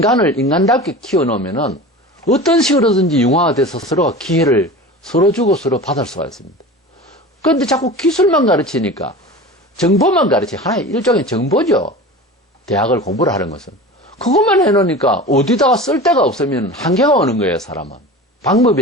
인간답게 키워놓으면은 어떤 식으로든지 융화돼서 서로가 기회를 서로 주고 서로 받을 수가 있습니다. 그런데 자꾸 기술만 가르치니까, 정보만 하나의 일종의 정보죠. 대학을 공부를 하는 것은. 그것만 해놓으니까 어디다가 쓸 데가 없으면 한계가 오는 거예요, 사람은.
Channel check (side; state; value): both; normal; correlation 0.34